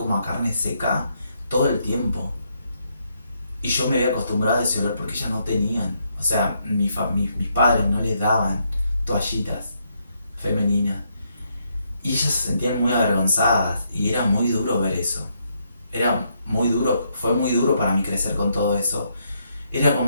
a carne seca todo el tiempo. Y yo me había acostumbrado a ese olor porque ellas no tenían. O sea, mis padres no les daban toallitas femeninas. Y ellas se sentían muy avergonzadas y era muy duro ver eso. Era muy duro, fue muy duro para mí crecer con todo eso. Era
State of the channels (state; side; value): inverted; both; correlation -0.76